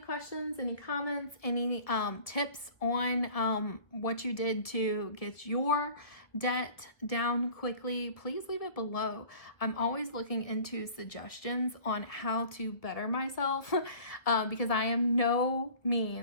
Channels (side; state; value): right; late; 1.4 ms